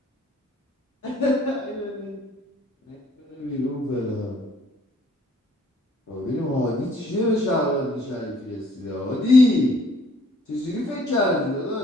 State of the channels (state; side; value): normal; both; correlation 0.60